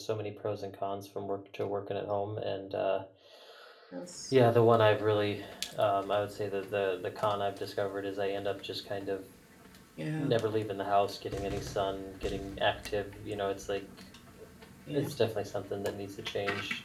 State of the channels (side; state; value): both; identical; correlation 1.00